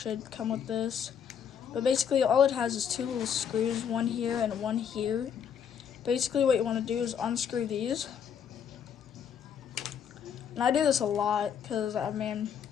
come with this. But basically, all it has is two little screws, one here and one here. Basically, what you want to do is unscrew these. And I do this a lot because, I mean,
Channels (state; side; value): quieter; right; 8.0 dB